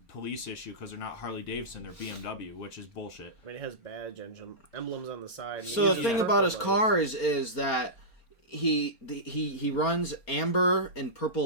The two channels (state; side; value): late; right; 4.3 ms